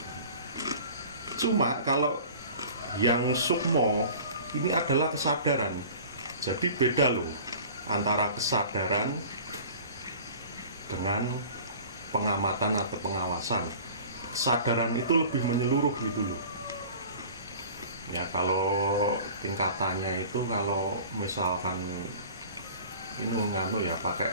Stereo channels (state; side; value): inverted; both; correlation -0.43